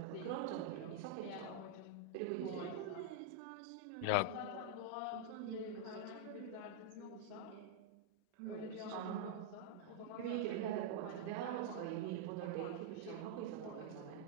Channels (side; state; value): both; different; correlation -0.01